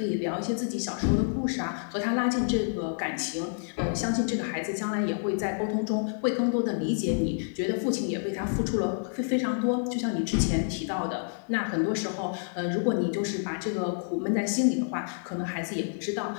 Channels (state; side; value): silent; right; digital silence